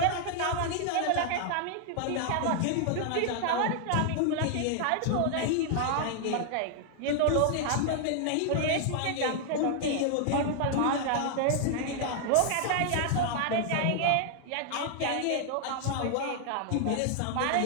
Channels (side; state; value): both; different; correlation 0.00